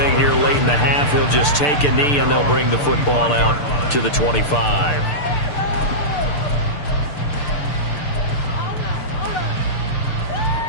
here late in the half, he'll just take a knee and they'll bring the football out to the 25.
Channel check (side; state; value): right; late; 6.8 ms